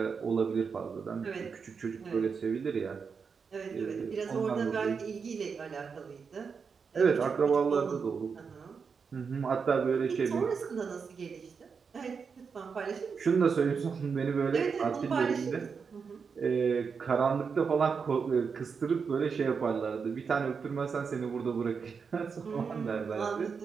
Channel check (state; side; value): quieter; left; 5.7 dB